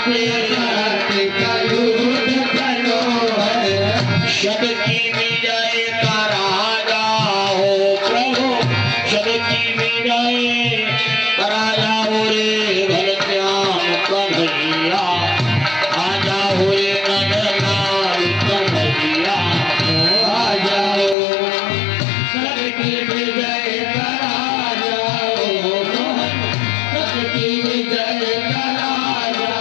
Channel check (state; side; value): drops out; right; at 21.2 s